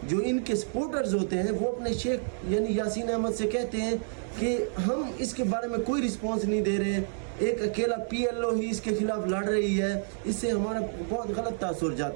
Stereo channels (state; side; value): silent; left; 58 dB below the other